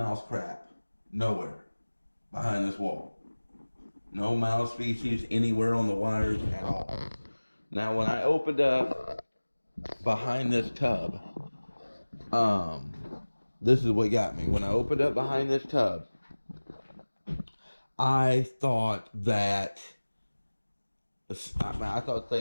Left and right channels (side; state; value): both; inverted; correlation -1.00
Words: crap. Nowhere. Behind this wall. No mouse species anywhere on the wires at all. Now when I opened up behind this tub, Um, this is what got me. When I opened up behind this tub, I thought that I thought